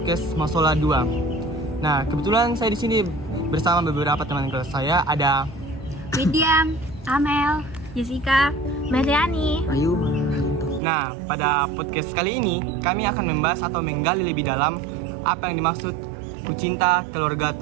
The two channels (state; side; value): drops out; left; at 10.8 s